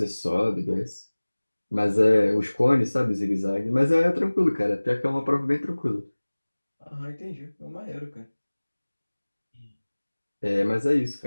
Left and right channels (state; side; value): inverted; both; correlation -1.00